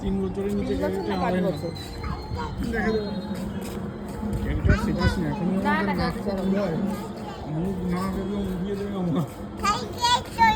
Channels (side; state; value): both; identical; correlation 1.00